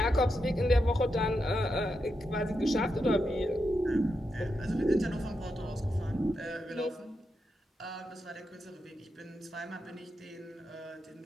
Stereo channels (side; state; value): both; normal; correlation 0.86